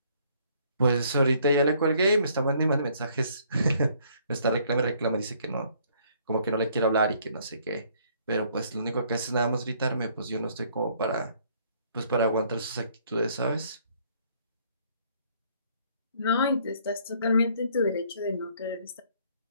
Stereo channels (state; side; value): inverted; both; correlation -0.63